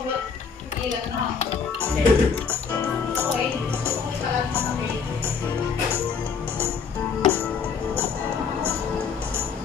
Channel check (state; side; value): quieter; right; 5.9 dB